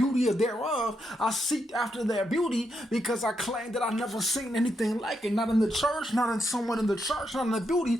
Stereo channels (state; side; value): normal; both; correlation 0.82